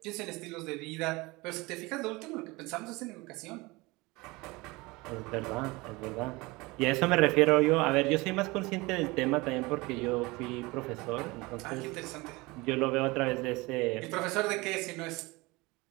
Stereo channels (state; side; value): quieter; left; 23.4 dB